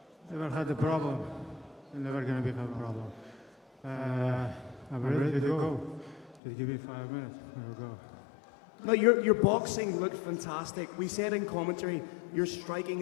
Never had a problem, and never gonna become a problem. I'm ready to go. Just give me 5 minutes, we'll go. No, your boxing looked fantastic. We said in commentary, your striking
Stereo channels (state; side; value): drops out; right; at 6.4 s